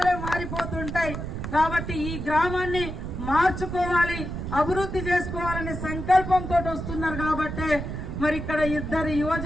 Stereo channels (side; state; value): right; noise; rumble, 6 dB below the sound